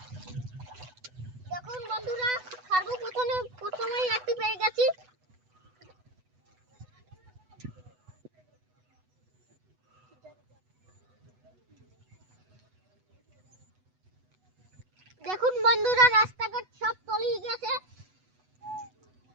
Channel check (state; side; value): late; left; 8.0 ms